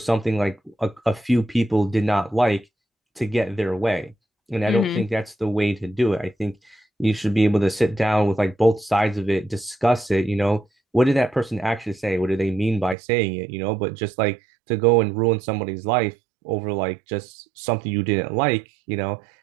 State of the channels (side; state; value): left; drops out; at 13.0 s